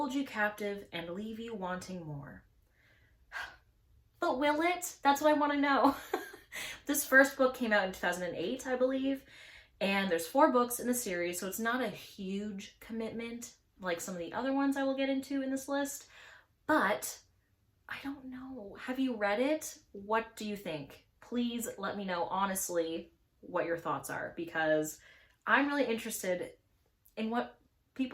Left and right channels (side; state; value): both; identical; correlation 1.00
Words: you captive, and leave you wanting more. But will it? That's what I want to know. This first book came out in 2008, I believe, and there's 4 books in the series, so it's not a huge commitment like some of the other ones I will get into in this list, but I don't know. Have you read it? What do you think? Please let me know honestly what your thoughts are, because I'm really interested in what